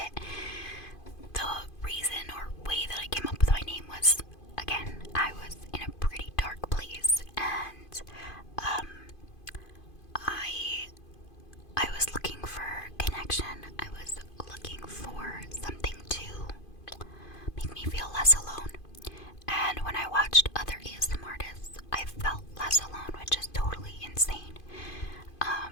The reason or way that I came up with my name was, again, I was in a pretty dark place, and I was looking for connection. I was looking for something to make me feel less alone. And when I watched other ASMR artists, I felt less alone, which is totally insane.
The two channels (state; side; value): late; right; 2.5 ms